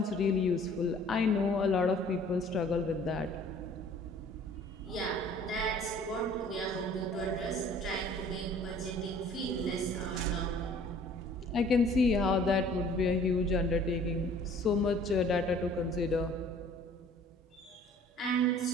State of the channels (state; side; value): normal; both; correlation 0.52